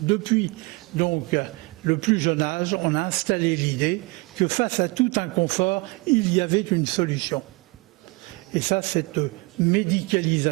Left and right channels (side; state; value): left; quieter; 26.5 dB